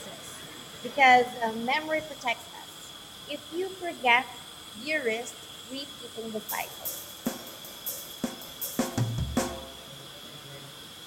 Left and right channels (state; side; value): identical; both; correlation 1.00